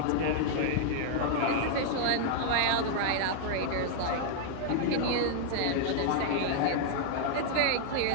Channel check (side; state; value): both; different; correlation -0.01